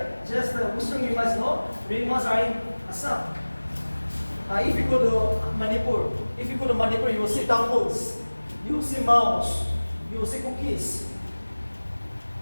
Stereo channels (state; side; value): inverted; both; correlation -1.00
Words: Just the Western you must know, Ringmas are in Assam. If you go to Manipur, you will see temples, you will see mouse, you will see cookies.